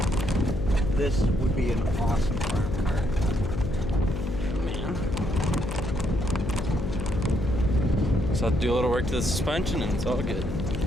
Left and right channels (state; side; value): noise; left; hum, 5 dB below the sound